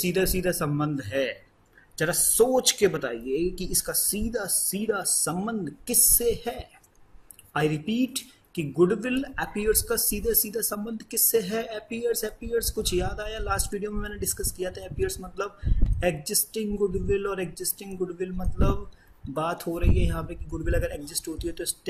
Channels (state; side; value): identical; both; correlation 1.00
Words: सीधा संबंध है, जरा सोच के बताइए कि इसका सीधा सीधा संबंध किससे है। आई रिपीट कि गुडविल अपीयर्स का सीधा सीधा संबंध किससे है। अपीयर्स कुछ याद आया? लास्ट वीडियो में मैंने डिस्कस किया था। अपीयर्स मतलब एग्जिस्टिंग गुडविल और एग्जिस्टिंग गुडविल मतलब बात हो रही है यहाँ पे कि गुडविल अगर एग्जिस्ट होती है तो